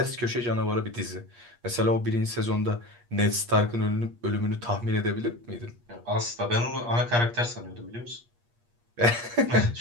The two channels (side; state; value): left; late; 8.4 ms